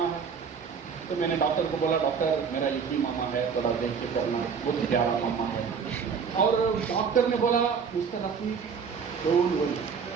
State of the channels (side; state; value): left; quieter; 6.2 dB